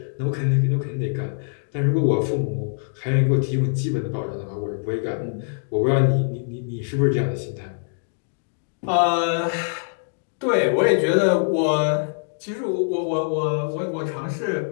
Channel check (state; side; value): silent; right; digital silence